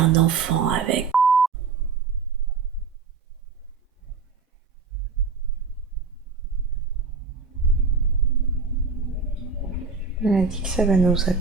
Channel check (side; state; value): left; quieter; 5.0 dB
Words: enfant avec. Elle a dit que ça va nous